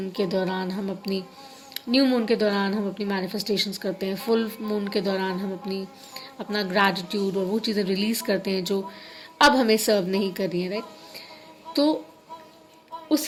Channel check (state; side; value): identical; both; correlation 1.00